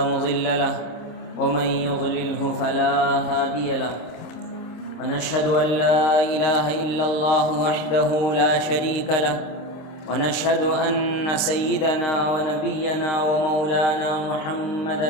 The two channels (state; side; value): late; right; 26 ms